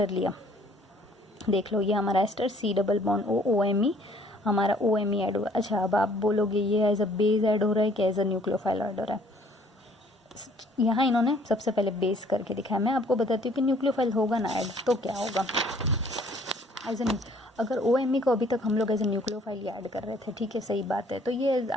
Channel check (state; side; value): normal; both; correlation 0.59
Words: लिया, देख लो ये हमारा ester C double bond OMe, हमारा OMe ऐड हुआ। अच्छा अब आप बोलोगे ये एज अ बेस ऐड हो रहा है कि एज अ न्यूक्लियोफाइल ऐड हो रहा है, यहाँ इन्होंने सबसे पहले बेस करके दिखाया। मैं आपको बताती हूँ कि न्यूक्लियोफाइल होगा ना ऐड तो क्या होगा, एज अ अगर OMe को अभी तक हम लोग एज ए न्यूक्लियोफाइल ऐड कर रहे थे, ठीक है, सही बात है। तो ये